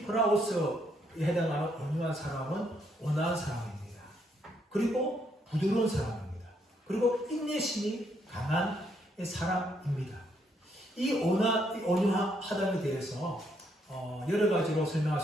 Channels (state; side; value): normal; both; correlation 0.73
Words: 프라오스에 해당하는 온유한 사람은 온화한 사람입니다. 그리고 부드러운 사람입니다. 그리고 인내심이 강한 사람입니다. 이 온유하다에 대해서 여러 가지로 설명할